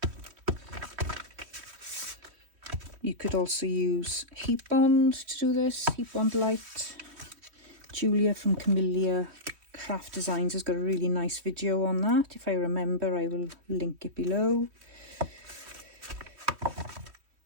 You could also use heat bond to do this, heat bond light. Julia from Camelia Craft Designs has got a really nice video on that. If I remember, I will link it below.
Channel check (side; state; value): left; late; 3.2 ms